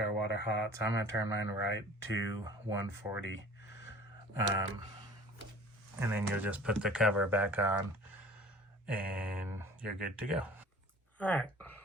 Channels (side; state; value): both; normal; correlation 0.46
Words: water hot, so I'm going to turn mine right to 140. And then you'll just put the cover back on and you're good to go. Alright,